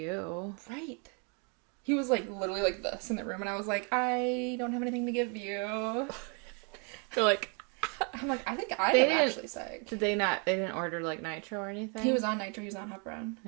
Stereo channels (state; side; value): quieter; left; 36.3 dB